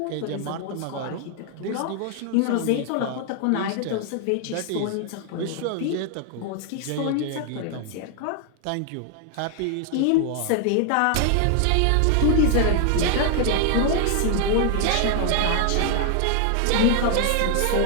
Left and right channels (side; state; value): both; different; correlation 0.00